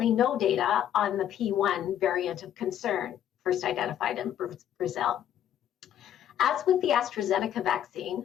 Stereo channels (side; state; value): right; quieter; 10.5 dB